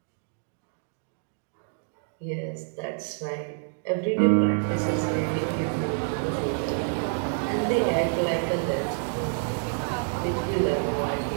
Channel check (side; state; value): left; silent; 60 dB below the other